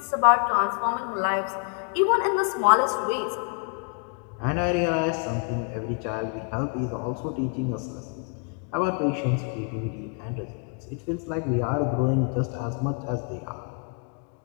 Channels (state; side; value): quieter; right; 38.0 dB